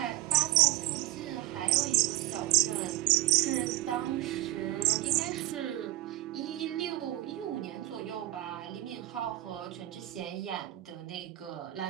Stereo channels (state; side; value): quieter; left; 16.7 dB